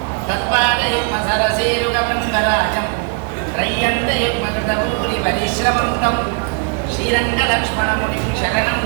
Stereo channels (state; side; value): quieter; left; 35.7 dB